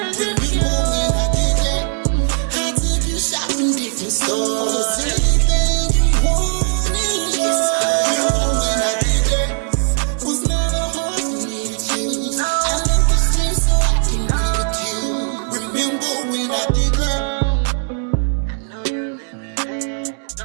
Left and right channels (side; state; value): left; silent; digital silence